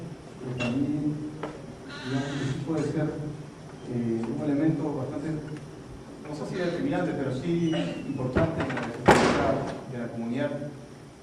pero también, digamos, que sí puede ser un elemento bastante, no sé si determinante, pero sí importante en la estructura de la comunidad.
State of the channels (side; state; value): both; identical; correlation 1.00